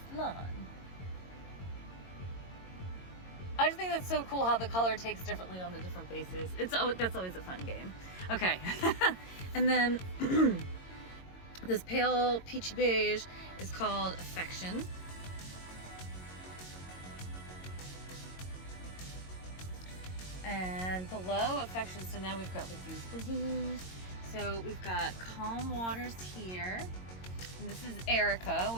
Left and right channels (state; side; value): late; right; 22 ms